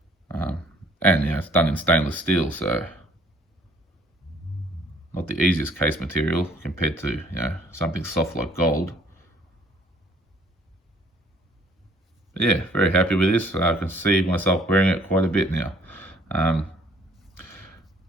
And you know, it's done in stainless steel, so not the easiest case material compared to, you know, something soft like gold. Yeah, very happy with this. I can see myself wearing it quite a bit now.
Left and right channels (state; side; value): normal; both; correlation 0.58